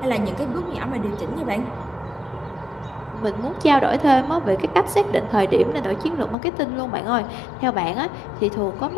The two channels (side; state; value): right; drops out; at 6.4 s